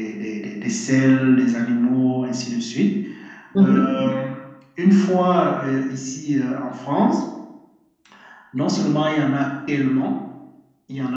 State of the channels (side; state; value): both; identical; correlation 1.00